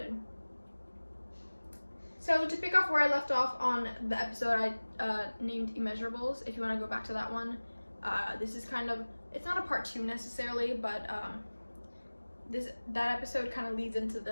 So to pick off where I left off on the episode I named Immeasurables, if you want to go back to that one, this is kind of, it's not a part 2 necessarily, but that episode kind of leads into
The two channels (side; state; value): both; inverted; correlation -1.00